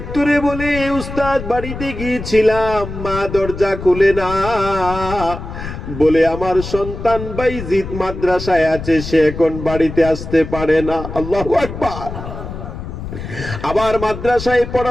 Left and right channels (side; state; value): left; noise; rumble, 9 dB below the sound